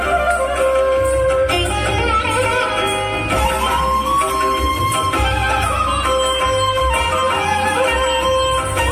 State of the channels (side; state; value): both; identical; correlation 1.00